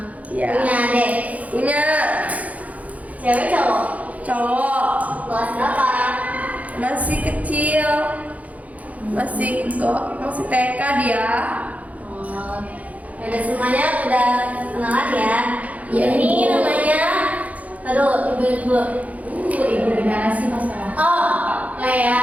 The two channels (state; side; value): late; left; 0.071 ms